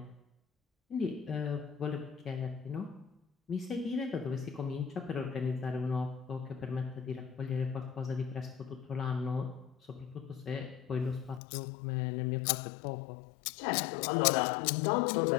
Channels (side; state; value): right; drops out; at 11.4 s